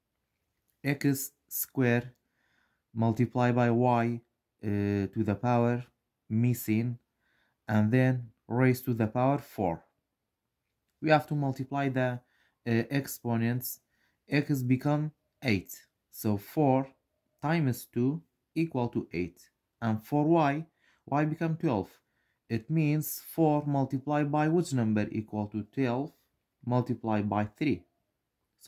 X squared multiplied by y to the power missing and then raised to the power 4. We have to multiply the exponents. X become 8. So 4 times 2 equal to 8. And for y become 12. It means 4 multiplied by which number equal to 12 multiplied by 3.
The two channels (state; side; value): identical; both; correlation 1.00